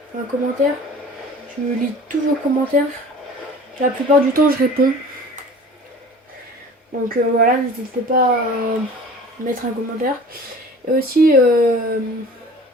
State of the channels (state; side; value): normal; both; correlation 0.43